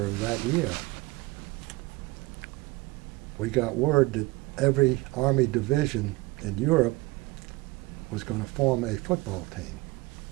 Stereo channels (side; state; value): left; quieter; 22.0 dB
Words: of that year, we got word that every Army division in Europe was going to form a football team.